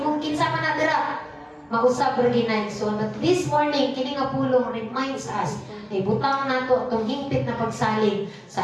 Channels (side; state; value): both; identical; correlation 1.00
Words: kinsa man na dira, mausab ra ginayson. But this morning, kini nga pulong reminds us na ibutang nato atong hingpit na pagsalig